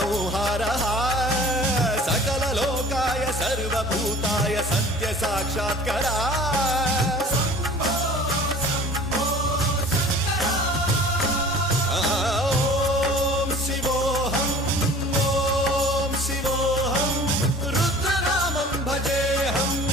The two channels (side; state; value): both; normal; correlation 0.45